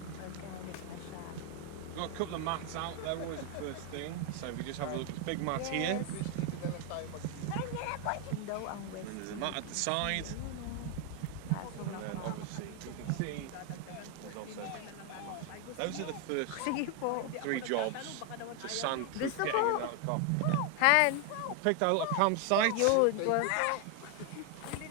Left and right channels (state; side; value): different; both; correlation 0.01